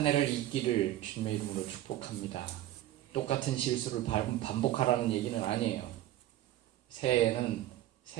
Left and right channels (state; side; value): quieter; left; 13.8 dB